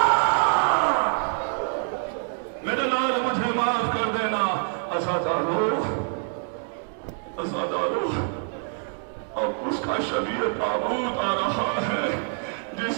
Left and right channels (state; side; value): silent; left; 56 dB below the other